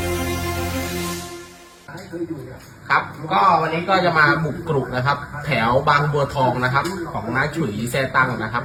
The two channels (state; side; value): identical; both; correlation 1.00